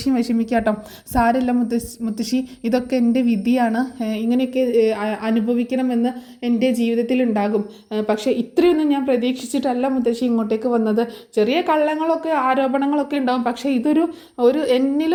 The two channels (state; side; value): identical; both; correlation 1.00